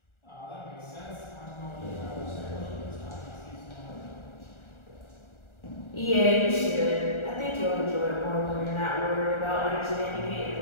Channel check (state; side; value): late; right; 1.4 ms